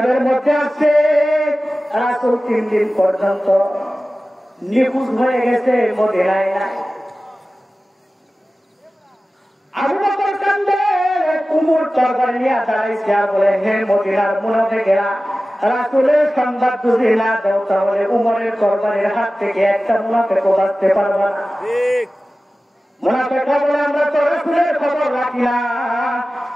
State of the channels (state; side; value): normal; both; correlation 0.96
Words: মধ্যে আছে রাসূল 3 দিন পর্যন্ত নিখোঁজ হয়ে গেছে, মদিনায় নাই। আবু বকর কান্দে, উমর তরবারি নিয়ে দাঁড়াইছে আর বলে, হে মদিনার মুনাফিকেরা, রাসূলের সংবাদ যদি না দাও তাহলে উমরের তরবারির হাত থেকে একটা মুনাফিকও বাঁচতে পারবে না। মুনাফিকরা বলে, আমরা তো রাসূলের খবর রাখি না,